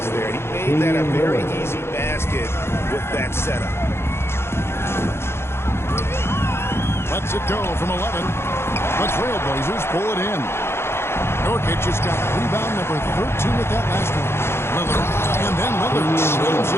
there. He made that a very easy basket with that setup. go from 11. The Trailblazers pull it in. Nurkic has got rebound number 13 with that last one. Lillard, and then Lillard slams it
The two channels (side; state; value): right; late; 0.12 ms